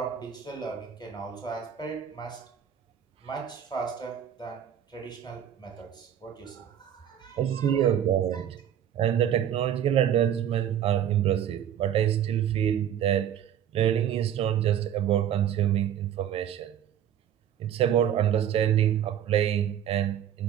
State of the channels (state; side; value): quieter; left; 9.9 dB